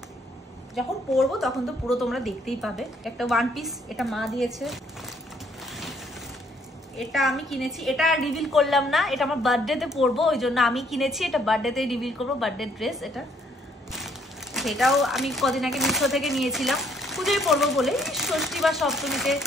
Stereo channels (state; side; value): normal; both; correlation 0.66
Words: যখন পরবো তখন তো পুরো তোমরা দেখতেই পাবে। একটা ওয়ান পিস, এটা মা দিয়েছে। এটা আমি কিনেছি, এটা রিভিল করলাম না, এটা আমার বার্থডেতে পরবো ওই জন্য আমি কিনেছি। এটা বার্থডেতেই রিভিল করবো, বার্থডে ড্রেস এটা। সেটাও আমি কদিন আগে মিশো থেকে নিয়েছিলাম, পুজোয় পরবো বলে, ষষ্ঠী বা সপ্তমীতে।